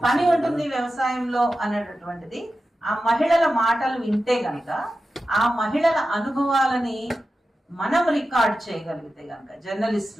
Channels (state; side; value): normal; both; correlation 0.93